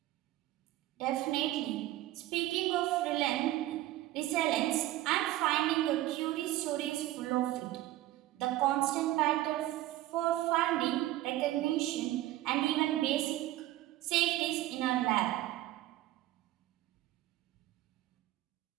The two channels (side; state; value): left; quieter; 15.6 dB